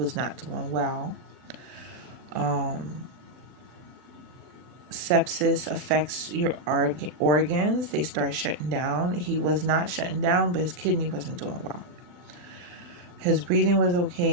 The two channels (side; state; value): left; late; 40 ms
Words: not doing well. Sepsis affects your organs. They start shutting down. He was not shutting down, but his kidney wasn't doing well. His breathing was